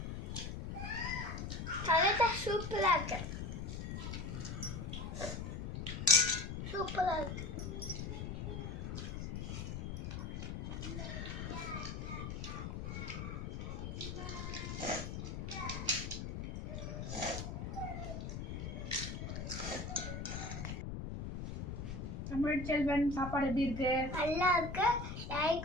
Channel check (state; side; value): noise; left; rumble, 5 dB below the sound